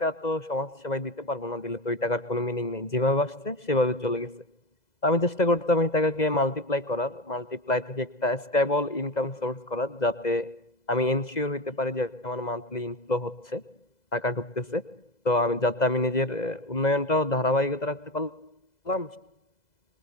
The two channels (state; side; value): late; right; 2.0 ms